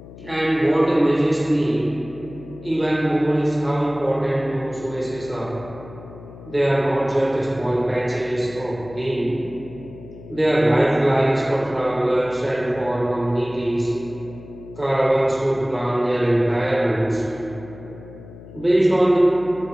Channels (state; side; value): noise; left; hum, 17 dB below the sound